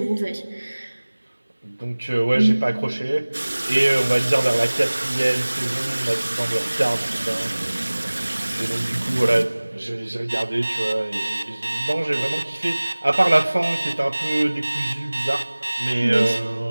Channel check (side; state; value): both; inverted; correlation -1.00